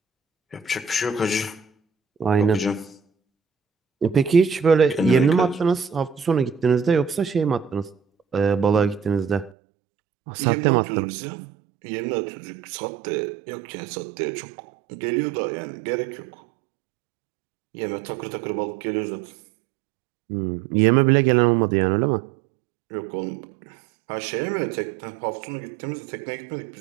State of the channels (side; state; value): left; drops out; at 9.5 s